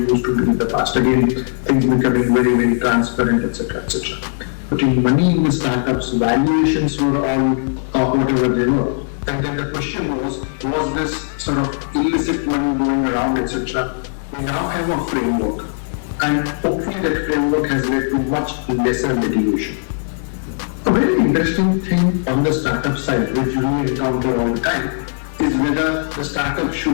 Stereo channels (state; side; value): silent; right; digital silence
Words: to be in the past. Again, things becoming very, very transparent, etc., etc. Putting money in the startups, valuations were all whatever they were. And then the question was this sort of illicit money going around, etc. We now have a framework, and hopefully that framework has led to much lesser litigation. A very interesting thing on the startup side, which we encounter all the time, is whether the startup